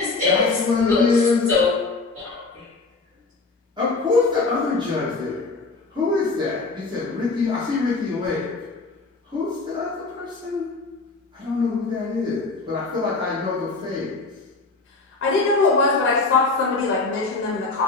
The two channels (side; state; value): right; quieter; 3.8 dB